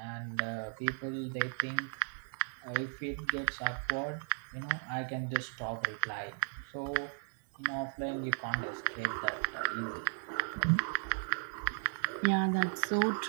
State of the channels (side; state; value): left; silent; 54 dB below the other